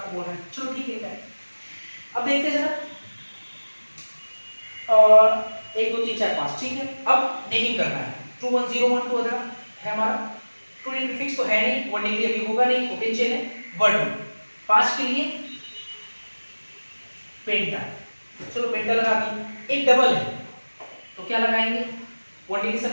बोल रहे हैं। चलो ठीक है, अब देखते हैं जरा, और 1 2 3 4 5, ठीक है। अब नेमिंग करना है। 2101 तो अगर है हमारा 2D प्रीफिक्स तो है नहीं, 1 डिग्री अभी होगा नहीं, ओपन चेन है। 1 2 5 के लिए पेंटा, चलो पेंटा लगा दी। एक डबल है तो क्या लगाएंगे? 1 डिग्री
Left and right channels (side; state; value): both; inverted; correlation -1.00